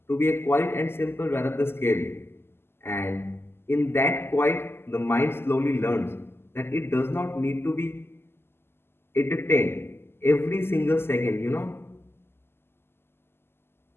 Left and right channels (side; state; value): right; late; 0.12 ms